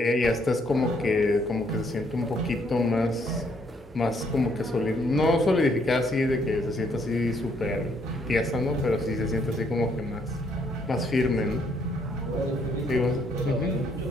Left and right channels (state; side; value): normal; both; correlation 0.69